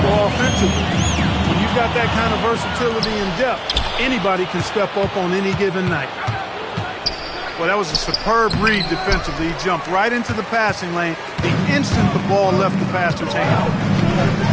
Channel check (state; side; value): identical; both; correlation 1.00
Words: offensively. When you've got that kind of versatility and depth, anybody can step up on any given night. Well, that was a superb read defensively. He jumped right into the passing lane the instant the ball left the passer's hand.